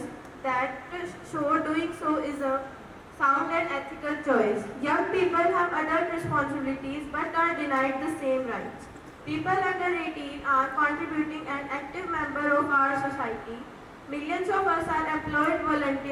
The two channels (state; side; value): identical; both; correlation 1.00